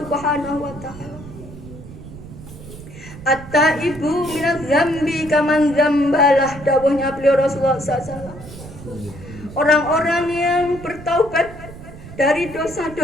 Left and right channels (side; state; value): right; noise; rumble, 15 dB below the sound